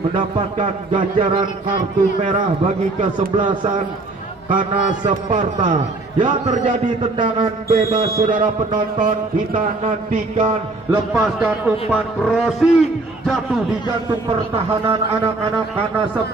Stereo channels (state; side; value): quieter; left; 3.2 dB